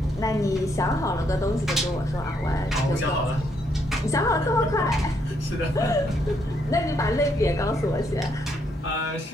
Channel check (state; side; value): normal; both; correlation 0.74